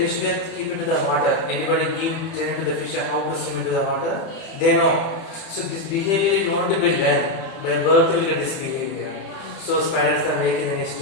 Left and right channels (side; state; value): right; late; 30 ms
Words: will keep into the water. Anybody give training to the fish how to swim into the water? They know. So this behavior is not to be learned. By birth we get this behavior. So spiders are making the nest,